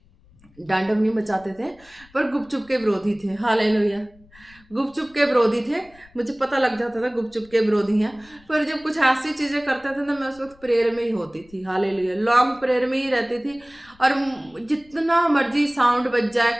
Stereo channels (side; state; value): left; noise; rumble, 28 dB below the sound